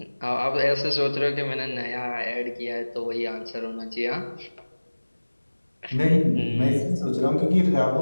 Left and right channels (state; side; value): inverted; both; correlation -1.00